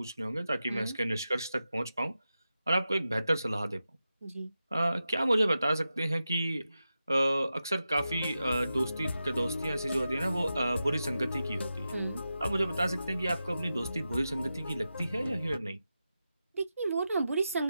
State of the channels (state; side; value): inverted; both; correlation -0.91